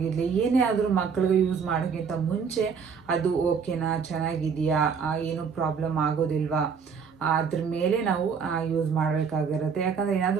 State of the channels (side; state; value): left; quieter; 6.2 dB